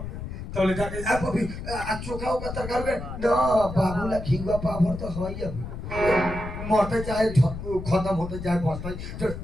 तो ले जाके अब अभी चोखा का तरकारी के ना बाबूला खिगवा पाभर तो है ही अभी मरते चाहे खत्म होते चाहे बचते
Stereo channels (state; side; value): noise; left; rumble, 8 dB below the sound